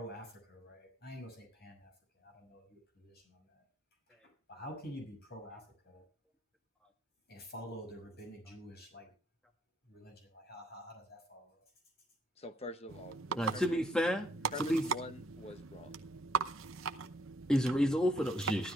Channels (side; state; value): both; normal; correlation 0.67